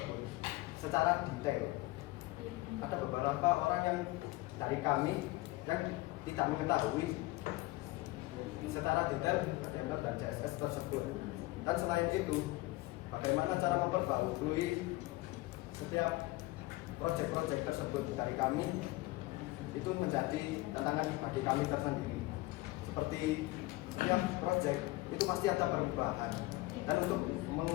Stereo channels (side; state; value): right; quieter; 20.2 dB